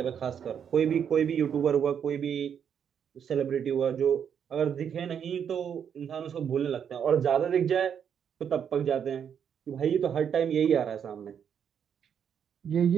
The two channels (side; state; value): left; quieter; 8.0 dB